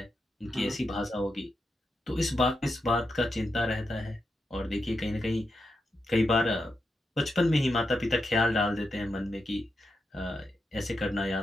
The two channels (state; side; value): normal; both; correlation 0.86